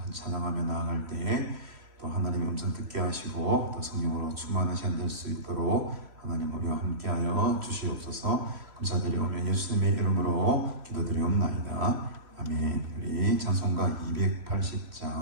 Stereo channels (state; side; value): late; left; 3.1 ms